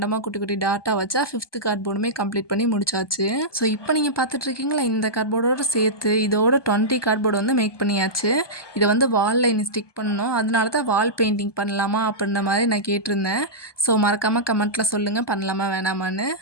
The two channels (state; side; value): late; right; 1.2 ms